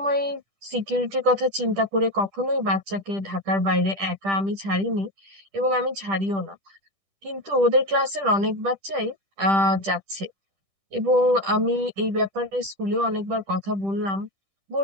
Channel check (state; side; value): late; left; 10 ms